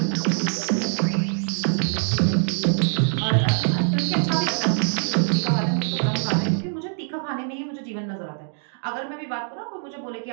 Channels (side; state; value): left; silent; digital silence